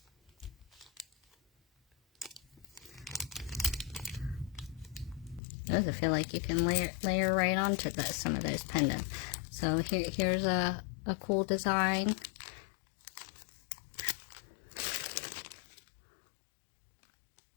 Those I feel like you can layer right onto some of those pendants. So here's a cool design.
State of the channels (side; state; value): right; drops out; at 5.4 s